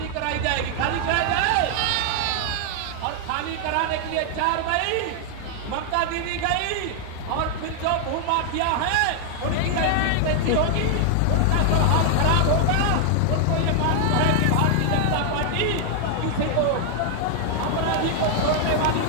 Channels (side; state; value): both; different; correlation 0.00